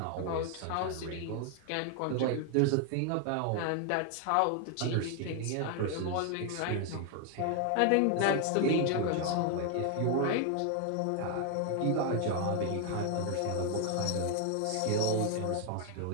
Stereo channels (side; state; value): both; different; correlation 0.00